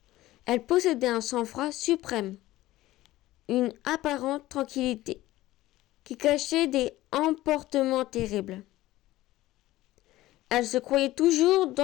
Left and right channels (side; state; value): right; quieter; 16.6 dB